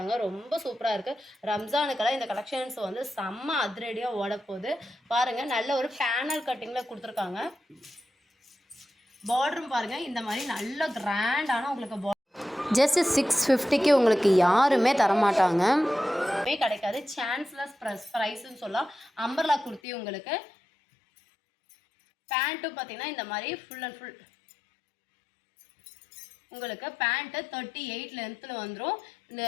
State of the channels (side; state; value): right; drops out; at 19.8 s